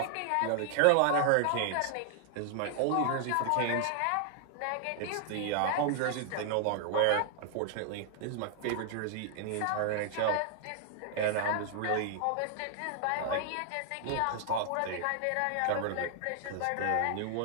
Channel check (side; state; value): both; different; correlation 0.00